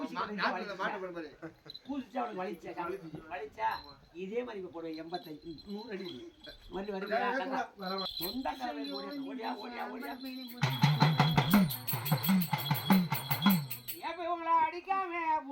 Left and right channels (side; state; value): both; identical; correlation 1.00